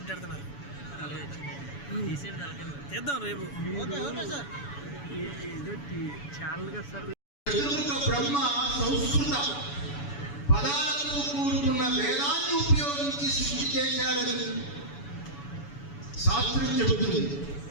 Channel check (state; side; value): late; right; 7.0 ms